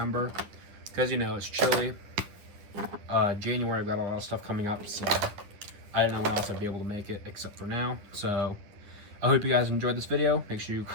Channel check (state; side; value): late; left; 10 ms